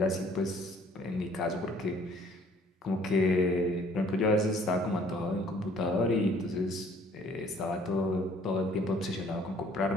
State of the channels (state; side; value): normal; both; correlation 0.57